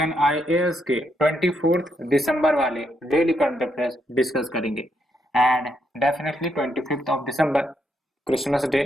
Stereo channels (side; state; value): both; normal; correlation 0.78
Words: IAS के 24 दिसंबर वाले डेली करंट अफेयर्स डिस्कस करेंगे एंड डेफिनेटली 25 दिसंबर Christmas day